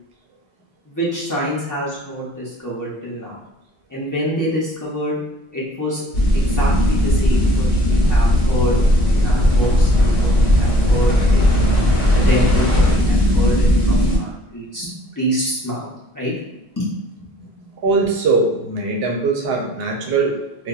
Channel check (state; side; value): normal; both; correlation 0.56